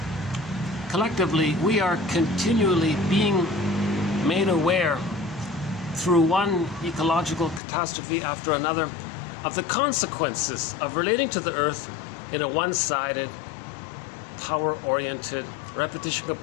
we are continually being made aware through one ecological catastrophe after another of the consequences of relating to the earth in a one-sided, power-oriented, repetition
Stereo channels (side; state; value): right; drops out; at 7.6 s